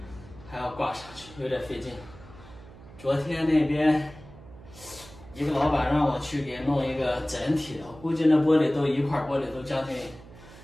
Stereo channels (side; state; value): right; noise; hum, 19 dB below the sound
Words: 还要挂上去，有点费劲。昨天那边一个老板让我去给弄一个整体的，我估计那玻璃都一块玻璃都将近